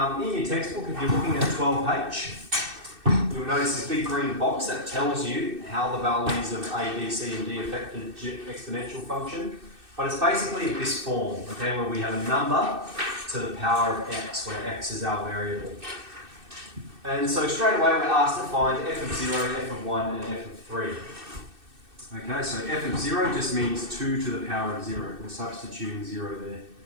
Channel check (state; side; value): late; left; 2.6 ms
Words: in your textbook, if you're looking at 12H, you'll notice this big green box that tells you how the values of A, B, C, and D affect the exponential function. But it's basically this form, okay, where we have a number to the power of x, where x is our variable. And so straight away we're asked to find f of 0, f of 1, and f of 3. Okay, so f of 0 just means 2 to the power of 0. We're substituting 0 there.